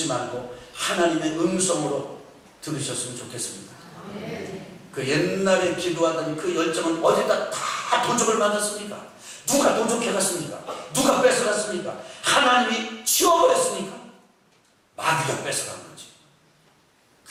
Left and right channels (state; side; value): identical; both; correlation 1.00